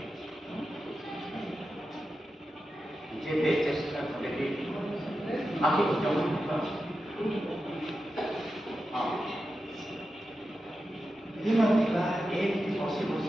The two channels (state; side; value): normal; both; correlation 0.90